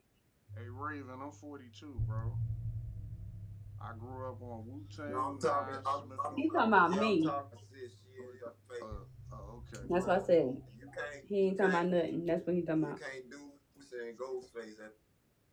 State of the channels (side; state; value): both; identical; correlation 1.00